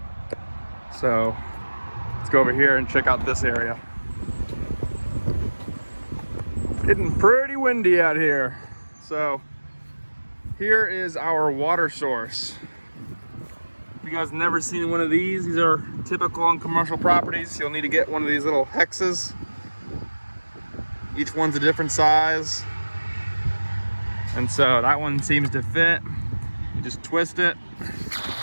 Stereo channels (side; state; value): both; inverted; correlation -1.00